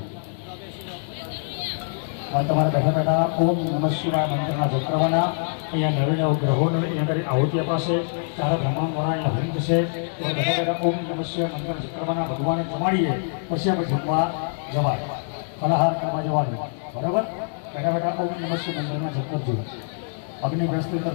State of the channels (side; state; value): right; silent; 62 dB below the other